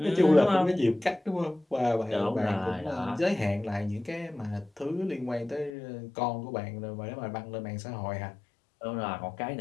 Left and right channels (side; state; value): right; drops out; at 5.8 s